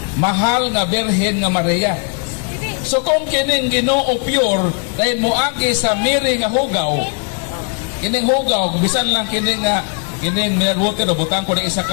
mahal nga Birhen nga Maria. So kung kining Ginoo pure, dahil moagi sa miri nga hugaw, kining hugaw, bisan lang kining mere water, butang ko na isa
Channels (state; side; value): quieter; right; 38.1 dB